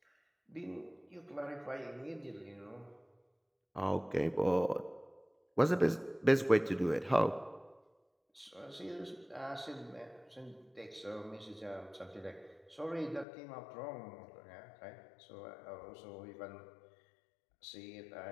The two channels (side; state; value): right; drops out; at 13.2 s